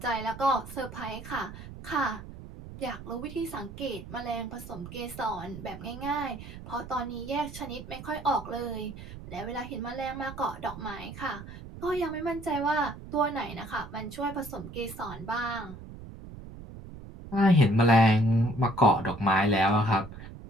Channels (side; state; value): right; noise; rumble, 13 dB below the sound